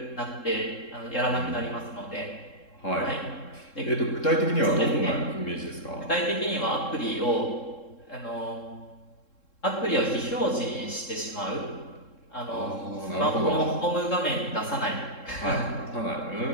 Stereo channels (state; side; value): late; right; 3.7 ms